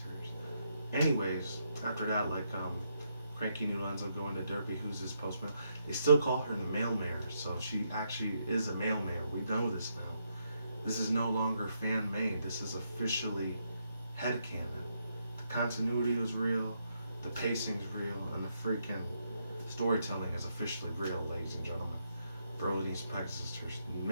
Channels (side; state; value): both; inverted; correlation -0.78